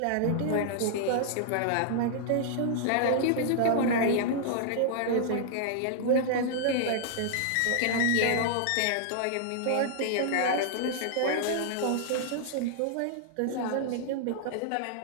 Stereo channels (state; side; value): different; both; correlation -0.01